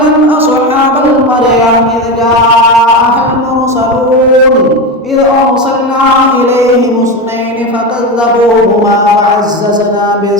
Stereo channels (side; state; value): both; normal; correlation 0.19